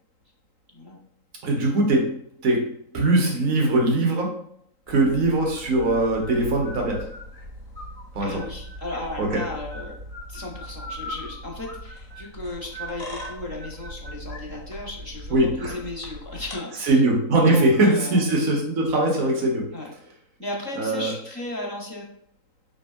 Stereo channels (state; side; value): late; left; 4.0 ms